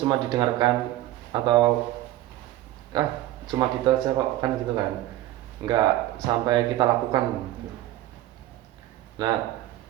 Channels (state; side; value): quieter; left; 15.0 dB